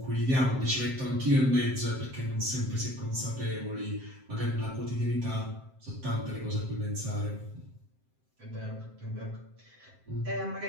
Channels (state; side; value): late; left; 7.7 ms